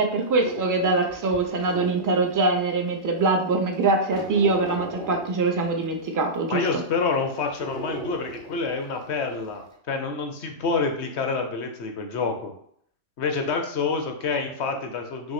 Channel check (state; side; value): late; right; 2.6 ms